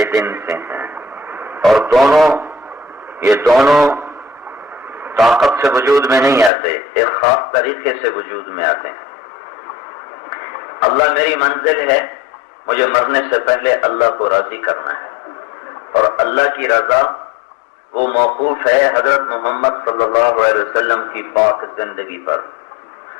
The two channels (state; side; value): drops out; right; at 6.5 s